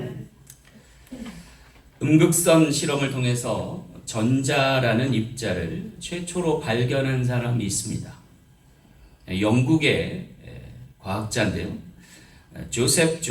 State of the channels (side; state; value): both; identical; correlation 1.00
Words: 음극선 실험을 통해서 전자라는 입자를 최초로 발견한 사람이 있습니다. 영국의 과학자인데요. 조셉